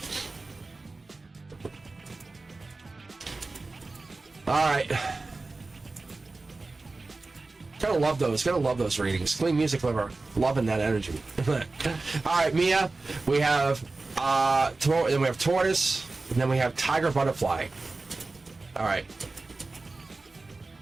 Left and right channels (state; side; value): quieter; left; 3.5 dB